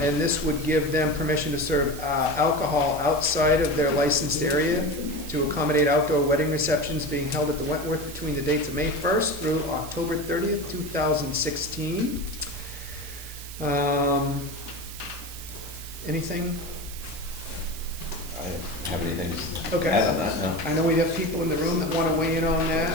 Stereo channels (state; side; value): noise; right; hiss, 13 dB below the sound